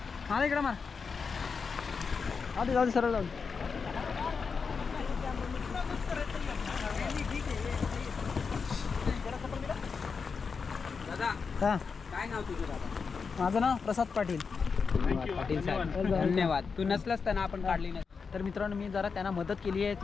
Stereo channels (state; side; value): quieter; right; 5.4 dB